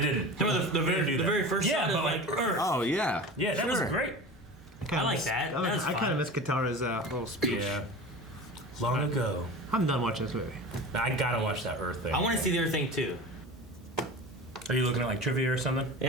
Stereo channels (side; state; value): both; normal; correlation 0.33